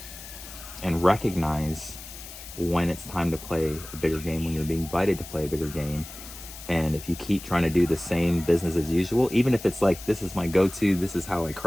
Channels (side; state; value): left; noise; hiss, 14 dB below the sound